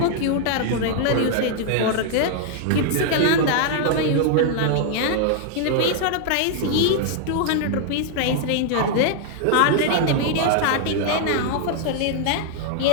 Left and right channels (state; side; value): different; both; correlation 0.00